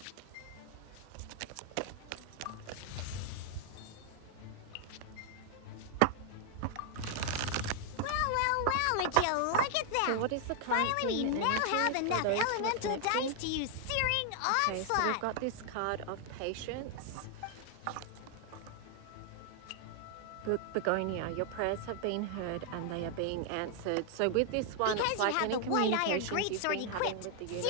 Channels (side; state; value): both; different; correlation 0.00